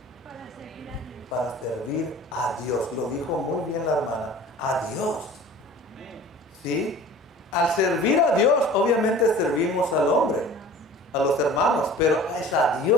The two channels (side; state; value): both; normal; correlation 0.43